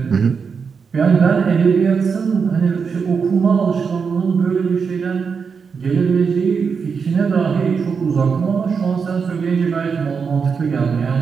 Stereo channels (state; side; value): quieter; left; 5.8 dB